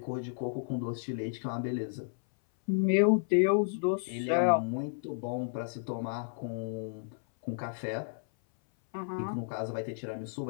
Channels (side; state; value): right; silent; 56 dB below the other